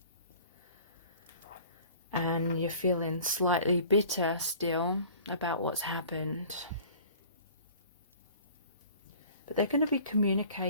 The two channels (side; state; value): both; inverted; correlation -0.48